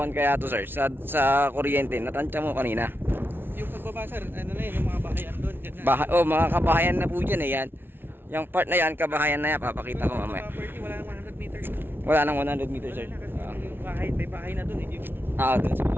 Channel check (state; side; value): late; left; 0.11 ms